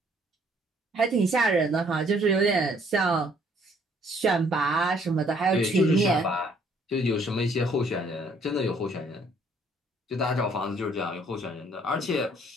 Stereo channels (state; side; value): normal; both; correlation 0.63